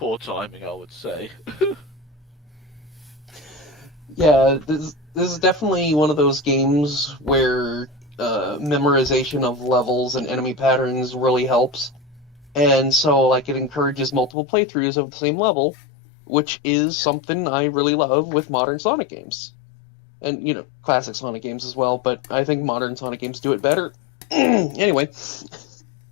timing, I would say. Yeah, this is definitely one of those games where memorization of levels and enemy patterns really helps. And so, like, it encourages multiple playthroughs of the same level, which is something I really love with modern Sonic games. And, you know, classic Sonic games as well, but I think modern Sonic games do it better. Anyway.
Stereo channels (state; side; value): drops out; right; at 14.3 s